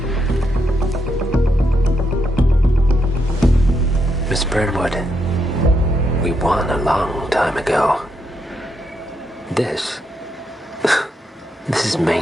Miss Burnwood, we won a long time ago. This is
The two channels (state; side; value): normal; both; correlation 0.80